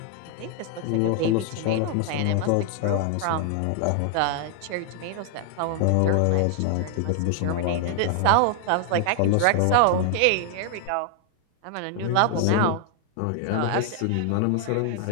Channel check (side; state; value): both; different; correlation 0.00